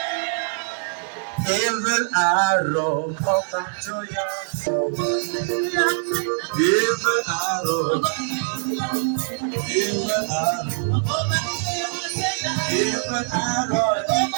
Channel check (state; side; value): silent; left; digital silence